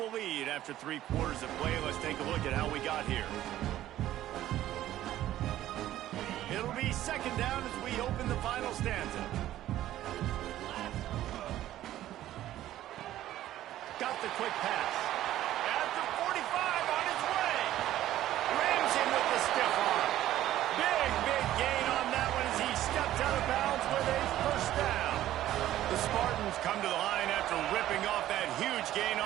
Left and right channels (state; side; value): quieter; left; 13.4 dB